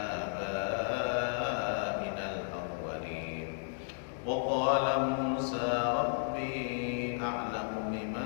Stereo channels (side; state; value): right; silent; digital silence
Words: al-awwalin. Wa qala Musa rabbi a'lamu